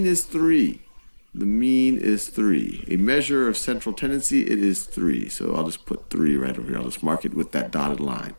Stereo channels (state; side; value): inverted; both; correlation -1.00